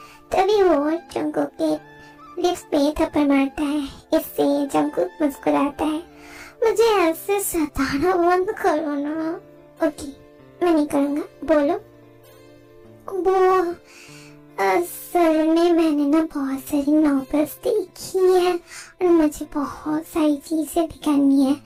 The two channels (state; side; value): identical; both; correlation 1.00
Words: तभी वो जंगकुक के लिप्स पे थप्पड़ मारता है। इससे जंगकुक मुस्कुराता है। मुझे ऐसे सताना बंद करो ना। ओके, मैं नहीं करूँगा। बोलो। वो असल में मैंने ना बहुत सारी नॉवेल्स देखी है और मुझे बहुत सारी चीजें भी करनी है।